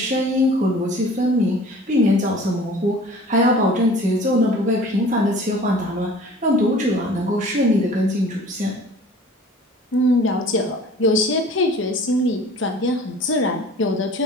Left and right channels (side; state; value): both; normal; correlation 0.46